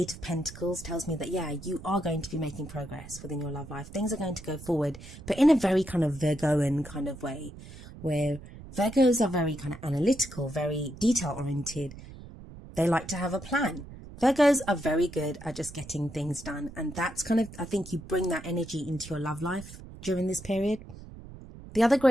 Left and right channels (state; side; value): noise; right; rumble, 15 dB below the sound